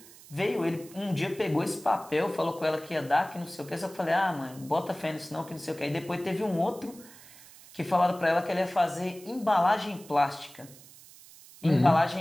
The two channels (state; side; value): noise; right; hiss, 21 dB below the sound